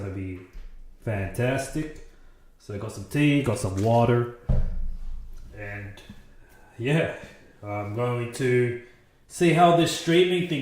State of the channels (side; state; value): both; identical; correlation 1.00